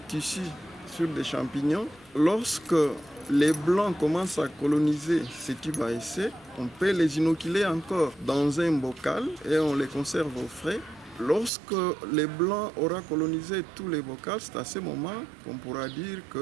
sur des champignons. Lorsque les blancs commencent à coloniser ces tubes à essai, on peut les inoculer encore dans un bocal et on les conserve au frais. Lorsque les blancs auront colonisé tous les bocals, c'est à ce moment qu'on pourra dire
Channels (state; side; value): drops out; left; at 11.5 s